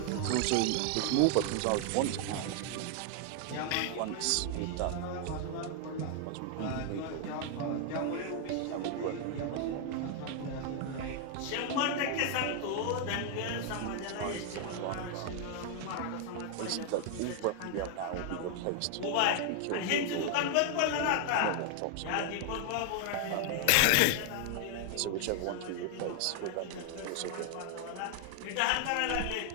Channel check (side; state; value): both; different; correlation 0.00